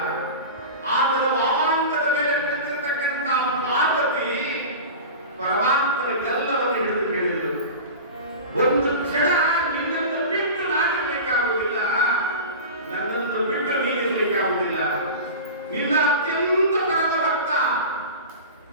ಆತನ ವಾಮಾಂಗದ ಮೇಲೆ ಕುಳಿತಿರ್ತಕ್ಕಂಥ ಪಾರ್ವತಿ ಪರಮಾತ್ಮನ ಗಲ್ಲವನ್ನು ಹಿಡಿದು ಕೇಳಿದರು, ಒಂದು ಕ್ಷಣ ನಿನ್ನನ್ನು ಬಿಟ್ಟು ನಾನಿರ್ಲಿಕ್ಕಾಗುವುದಿಲ್ಲ, ನನ್ನನ್ನು ಬಿಟ್ಟು ನೀನಿರ್ಲಿಕ್ಕಾಗುವುದಿಲ್ಲ. ನಿನ್ನ ಅತ್ಯಂತ ಪರಮ ಭಕ್ತ,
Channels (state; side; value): inverted; both; correlation -0.31